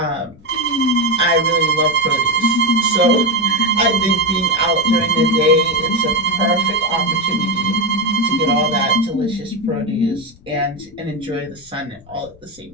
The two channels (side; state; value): left; noise; rumble, 25 dB below the sound